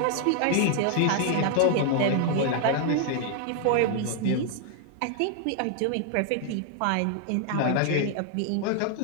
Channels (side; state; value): both; different; correlation 0.00